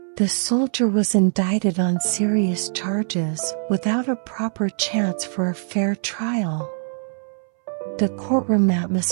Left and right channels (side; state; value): left; silent; 63 dB below the other